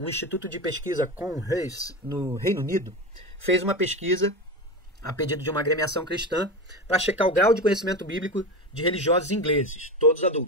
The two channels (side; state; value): both; normal; correlation 0.23